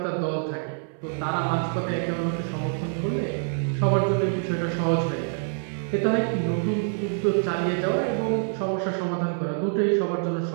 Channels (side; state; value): left; silent; 61 dB below the other